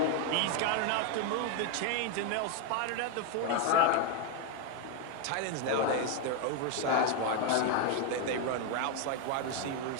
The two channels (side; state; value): both; different; correlation 0.01